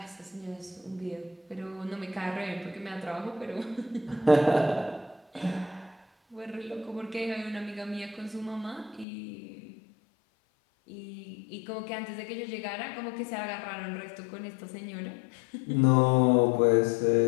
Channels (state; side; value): drops out; right; at 9.1 s